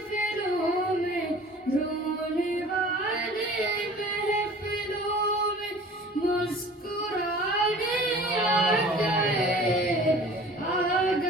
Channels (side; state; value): both; normal; correlation 0.45